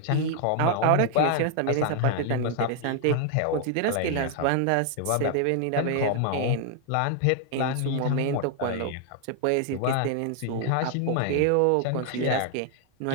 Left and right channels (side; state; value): both; different; correlation 0.00